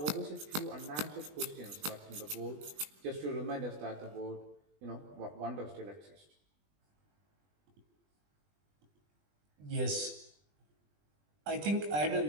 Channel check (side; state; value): left; late; 20 ms